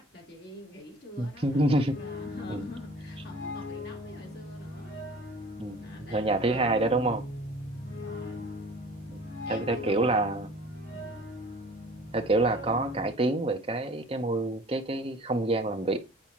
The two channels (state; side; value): normal; both; correlation 0.46